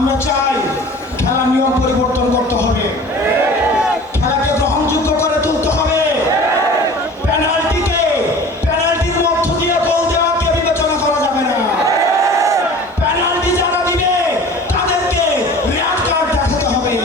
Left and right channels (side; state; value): both; normal; correlation 0.42